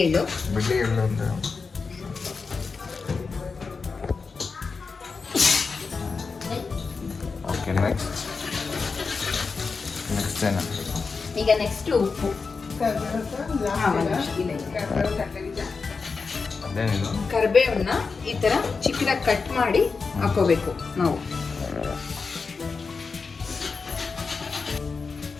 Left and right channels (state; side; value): quieter; right; 4.7 dB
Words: ಎಳ್ಳು. ಅಂದರೆ ಓಕೆ. ನೆಕ್ಸ್ಟ್ ಏನು? ಈಗ ನೆಕ್ಸ್ಟ್ ಉಪ್ಪು. ಕರಿಬೇವನ್ನ ಈ ಥರ ಚಿಕ್ಕದಾಗಿ ಕಟ್ ಮಾಡಿ ಹಾಕೋಬೇಕು ನಾವು.